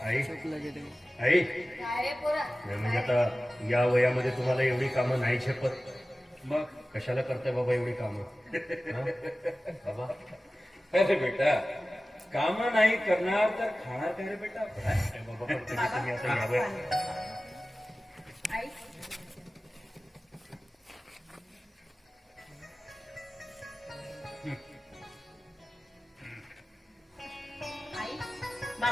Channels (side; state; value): both; normal; correlation 0.96